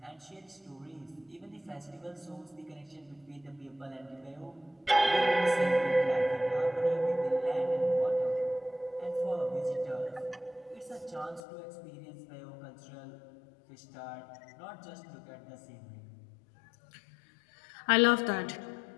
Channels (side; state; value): right; drops out; at 11.4 s